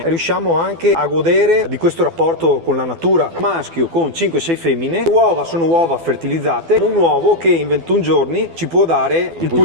riusciamo anche a godere di questo rapporto con la natura. Maschio con 5-6 femmine, le uova sono uova fertilizzate, un uovo che in 21 giorni ci può dare il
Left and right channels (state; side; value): late; left; 12 ms